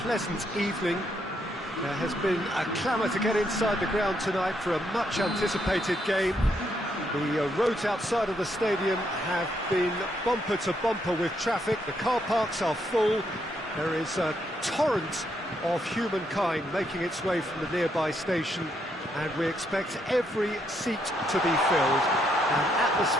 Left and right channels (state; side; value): normal; both; correlation 0.76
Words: pleasant evening. There has been a clamour to get inside the ground tonight for a much anticipated game. The roads outside of the stadium have been bumper to bumper with traffic. The car parks are full. There is a torrent of humankind making its way from the nearby station, and we expect every seat to be filled. An